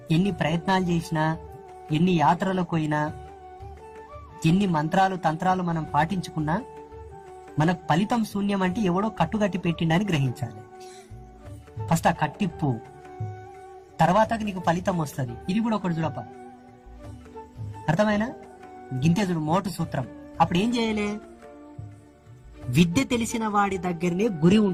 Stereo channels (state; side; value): identical; both; correlation 1.00